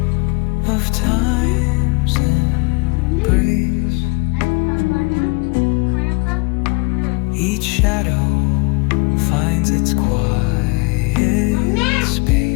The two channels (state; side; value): quieter; right; 28.1 dB